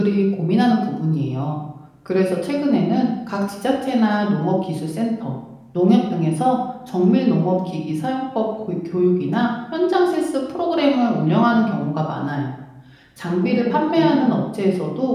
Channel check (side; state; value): both; identical; correlation 1.00